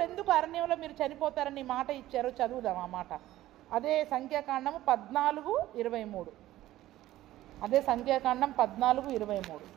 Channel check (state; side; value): quieter; left; 15.0 dB